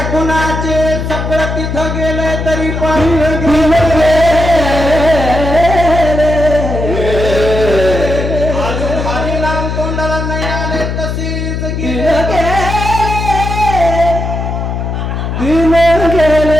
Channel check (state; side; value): noise; left; hum, 3 dB below the sound